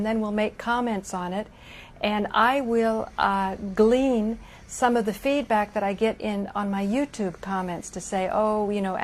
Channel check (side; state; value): both; identical; correlation 1.00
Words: then we'll make comments on it. And I will glean some of the feedback that I get on my YouTube comments to say, oh,